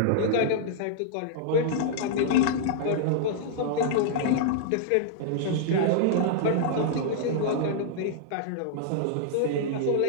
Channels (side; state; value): both; different; correlation -0.02